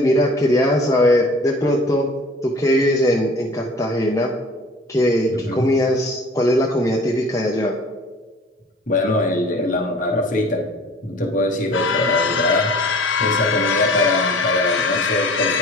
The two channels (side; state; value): both; normal; correlation 0.46